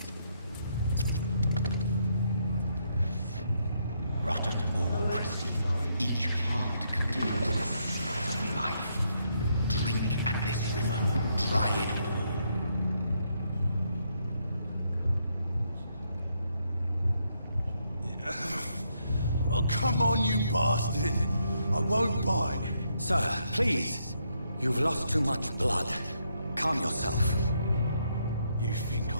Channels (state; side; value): inverted; both; correlation -0.76